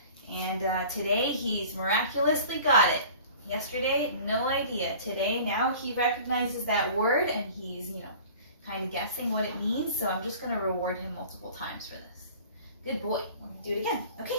And today he's miraculously got it. Yesterday, no idea. Today, now he recognizes that word and he's, kind of guessing what it means. So I'm just going to reward him multiple times for this. Good boy. We're going to do it again. Okay,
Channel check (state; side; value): inverted; both; correlation -0.44